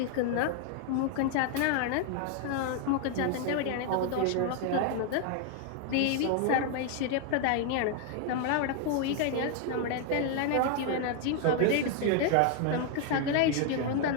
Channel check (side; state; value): both; different; correlation 0.00